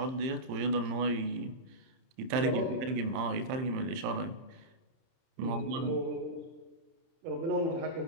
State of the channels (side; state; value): left; late; 30 ms